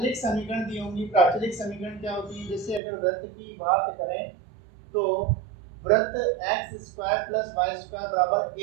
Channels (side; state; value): left; drops out; at 2.8 s